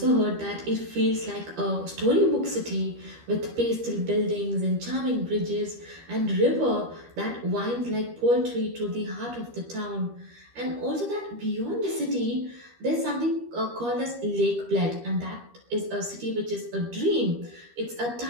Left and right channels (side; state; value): left; late; 13 ms